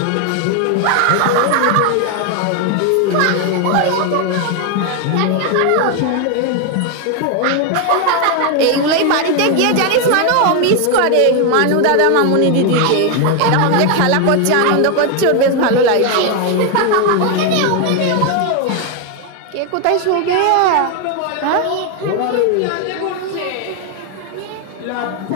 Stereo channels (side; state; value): both; different; correlation 0.01